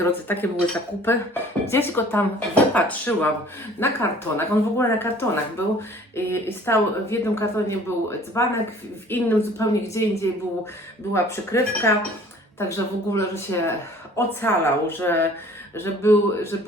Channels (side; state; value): both; normal; correlation 0.51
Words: takie były zakupy. Gdzieś go tam wypatrzyłam na kartonach. On w ogóle na kartonach był. I stał, w jednym kartonie był dzbanek, w innym zupełnie gdzie indziej była przykrywka. Także w ogóle, że się ocalał, że